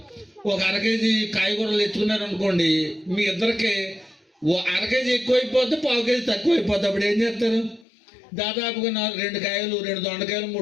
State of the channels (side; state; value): right; drops out; at 7.9 s